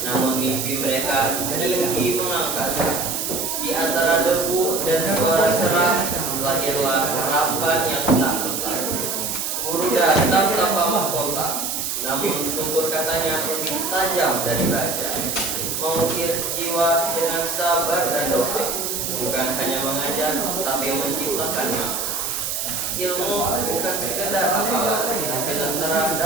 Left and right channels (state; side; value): noise; right; hiss, 2 dB below the sound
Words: namun mimpi mereka tinggi mengangkasa. Di antara debu dan suara serak, lahirlah harapan yang tak letak. Guru datang tanpa mahkota, namun tutur katanya lebih tajam dari baja. Mengukir jiwa dengan sabar dan doa, bukan hanya mengajar, tapi menciptakan makna. Ilmu bukan sekedar hafalan, tapi lentera